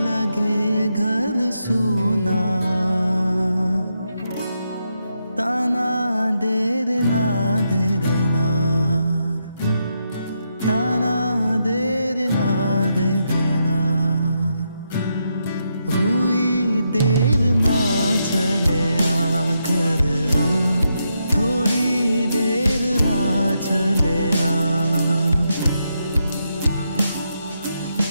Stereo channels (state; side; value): inverted; both; correlation -0.82